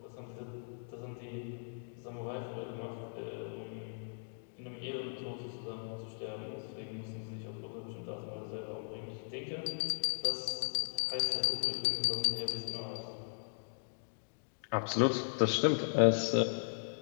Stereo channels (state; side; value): silent; right; digital silence